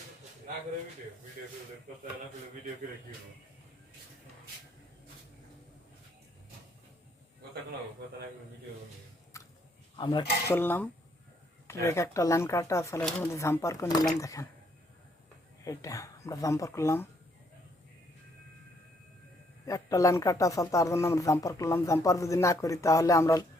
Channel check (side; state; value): both; normal; correlation 0.70